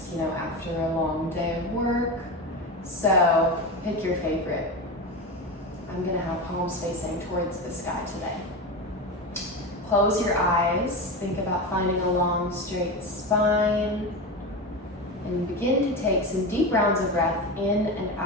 after a long day of work. So pick your favorite. I'm gonna have palms facing towards the sky today. Close your eyes, think about finding a long straight spine, and begin to take some deep rounds of breath in and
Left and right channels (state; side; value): normal; both; correlation 0.21